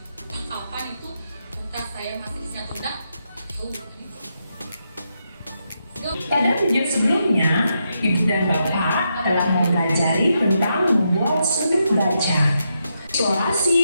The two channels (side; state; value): both; inverted; correlation -0.83